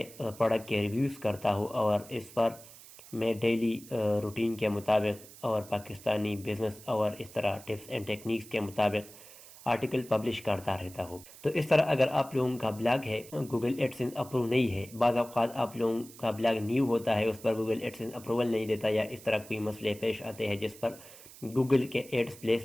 پروڈکٹ کے ریویوز کرتا ہوں، اور اس پر میں ڈیلی روٹین کے مطابق اور پاکستانی بزنس اور اس طرح ٹپس اینڈ ٹیکنیکس کے مطابق آرٹیکل پبلش کرتا رہتا ہوں۔ تو اس طرح اگر آپ لوگوں کا بلاگ ہے گوگل ایڈسنس اپروو نہیں ہے، بعض اوقات آپ لوگوں کا بلاگ نیو ہوتا ہے، اس پر گوگل ایڈسنس اپروول نہیں دیتا، یا اس طرح کوئی مسئلے پیش آتے ہیں جس پر گوگل کے ایڈز پلیس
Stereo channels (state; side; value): noise; right; hiss, 19 dB below the sound